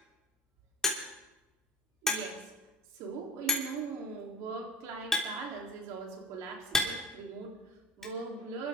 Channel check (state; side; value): normal; both; correlation 0.39